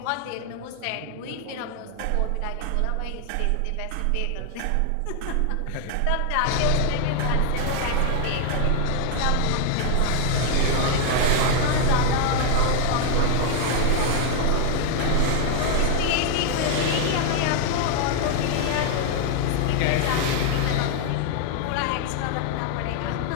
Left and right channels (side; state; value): both; different; correlation 0.00